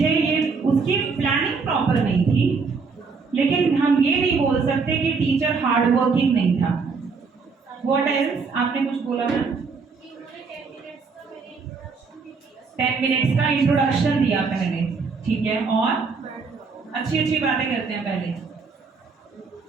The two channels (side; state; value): left; quieter; 4.8 dB